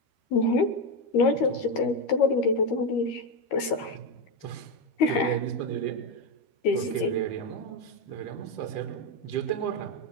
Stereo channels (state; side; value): late; right; 13 ms